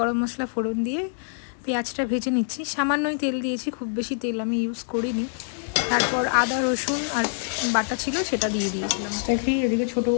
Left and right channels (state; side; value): silent; right; 62 dB below the other